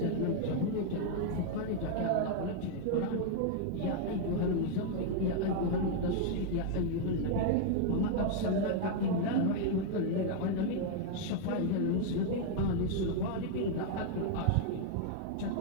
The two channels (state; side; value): different; both; correlation 0.00